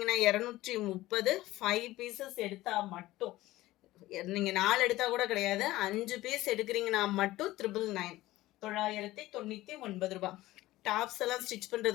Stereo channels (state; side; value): quieter; right; 17.2 dB